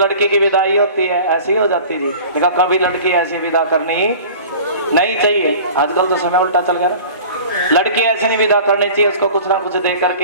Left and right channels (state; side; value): inverted; both; correlation -0.41